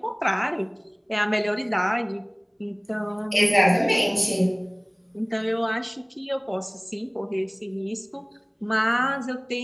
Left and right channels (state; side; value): identical; both; correlation 1.00